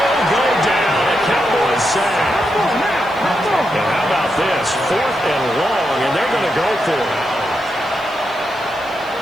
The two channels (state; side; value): noise; right; hiss, 27 dB below the sound